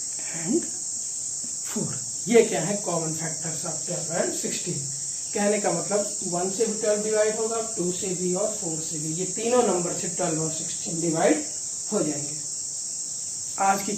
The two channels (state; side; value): identical; both; correlation 1.00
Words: एंड 4। ये क्या है कॉमन फैक्टर्स ऑफ 12 एंड 16। कहने का मतलब 1 से भी 12 डिवाइड होगा, 2 से भी और 4 से भी, ये तीनों नंबर से 12 और 16 डिवाइड हो जाएंगे। आज की